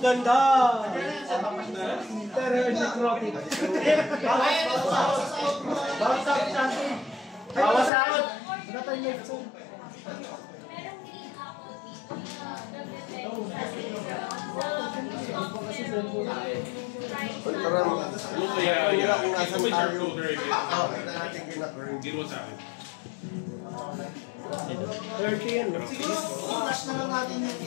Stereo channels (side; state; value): right; drops out; at 7.9 s